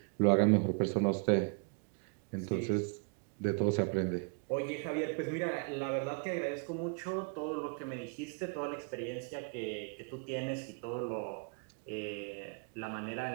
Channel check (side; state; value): left; quieter; 37.9 dB